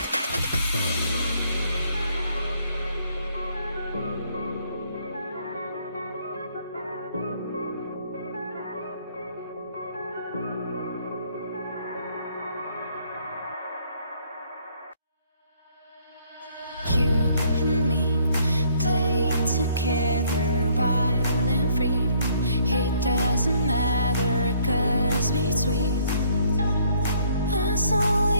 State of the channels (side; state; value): both; inverted; correlation -0.64